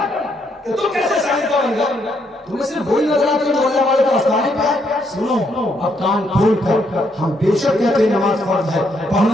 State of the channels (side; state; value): both; normal; correlation 0.74